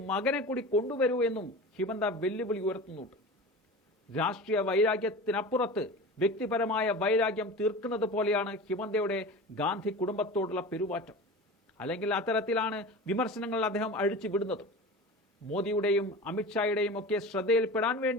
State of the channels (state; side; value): normal; both; correlation 0.33